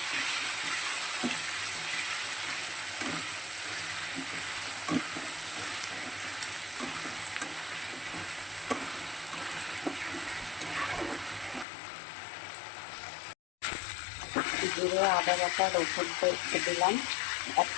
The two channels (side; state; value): right; drops out; at 11.7 s